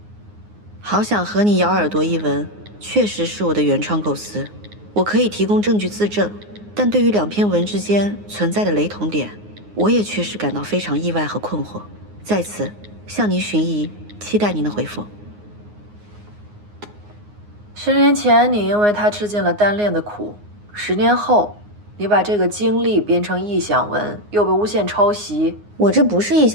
好想和你咬耳朵一文，确实是我的原创构思，我可以提供证据自证。但对于2篇文之间存在的雷同点，我也确实感到非常意外和困惑。在此向您寻疑，期待您的回复。10年前，你因为他吃尽了单恋的苦；10年后，你把这个经历编成臆想文，又被诬陷抄袭。我这不是臆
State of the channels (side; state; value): left; late; 9.6 ms